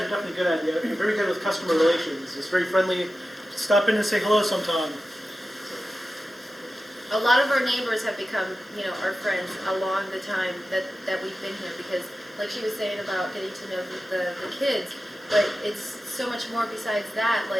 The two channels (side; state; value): both; normal; correlation 0.93